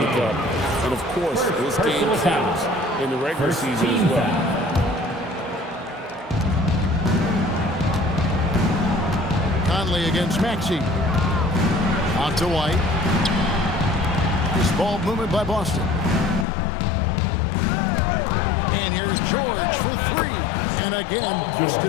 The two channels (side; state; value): right; drops out; at 16.4 s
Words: Cup. And, of course, this game counts in the regular season as well. Conley against Maxey. Out to White. This ball movement by Boston. And here's George for 3. And again,